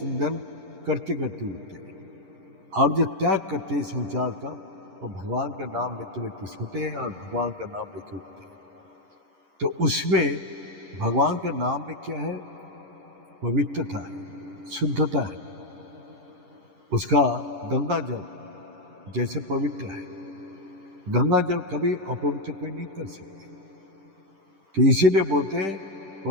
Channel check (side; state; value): left; late; 10 ms